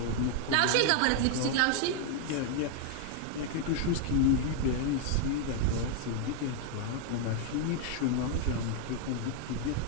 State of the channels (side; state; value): both; different; correlation 0.00